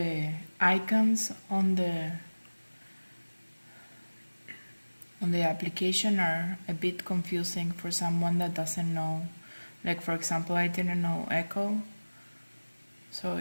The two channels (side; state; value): both; inverted; correlation -1.00